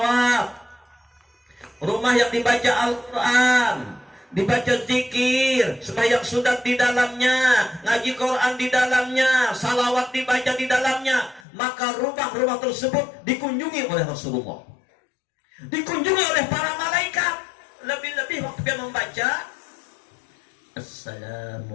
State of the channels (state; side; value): drops out; right; at 11.5 s